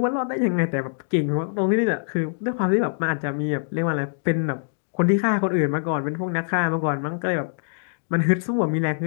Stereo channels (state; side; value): silent; right; digital silence